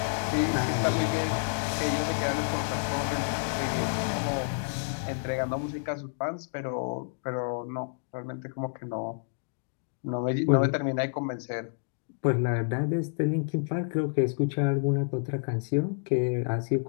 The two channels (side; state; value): right; silent; digital silence